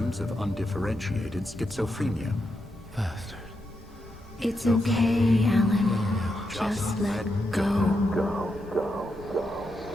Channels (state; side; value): normal; both; correlation 0.84